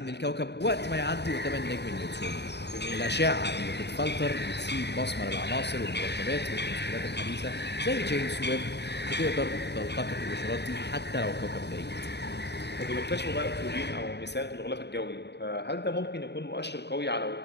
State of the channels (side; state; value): right; late; 0.50 ms